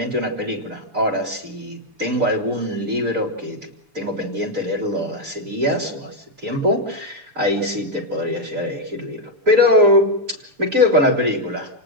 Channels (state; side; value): late; left; 6.9 ms